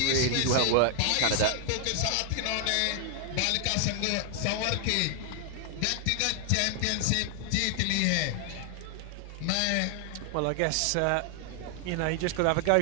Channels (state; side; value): different; both; correlation 0.00